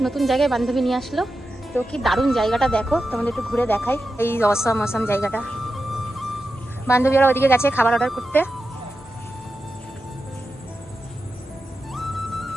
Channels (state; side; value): normal; both; correlation 0.90